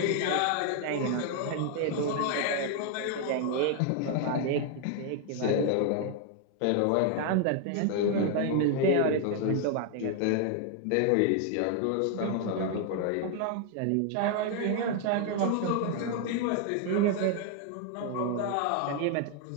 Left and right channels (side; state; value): both; different; correlation 0.00